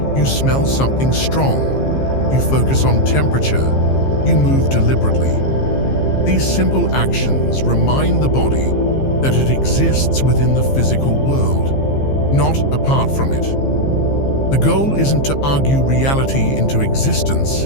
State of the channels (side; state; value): right; late; 15 ms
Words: You smell something strong, you focus on temperature, you move deliberately. These simple actions remind the body that it exists within the physical world, not apart from it. The goal isn't to argue reality into existence,